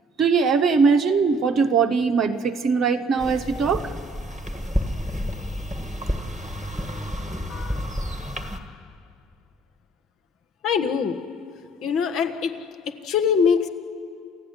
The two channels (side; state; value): both; normal; correlation 0.58